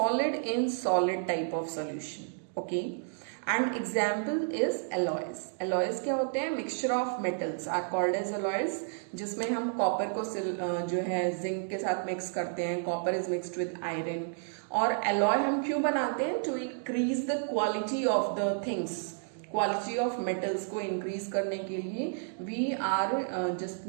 in solid type of solution. Okay, and example is alloys. Alloys क्या होते हैं? Mixture of metals are called as alloys, जिसमें हम copper को जो है zinc के साथ मिक्स करते हैं. Copper is mixed with iron. और alloy हम क्यों बनाते हैं? To increase the quality of the things, quality of metals को इंक्रीज करने के लिए we are just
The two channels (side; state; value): left; silent; digital silence